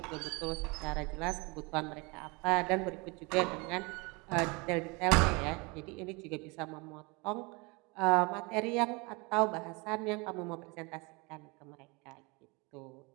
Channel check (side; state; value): left; quieter; 27.8 dB